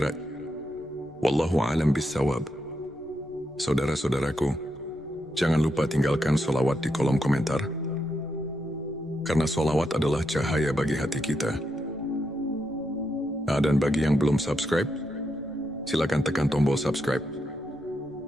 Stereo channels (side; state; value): left; noise; rumble, 27 dB below the sound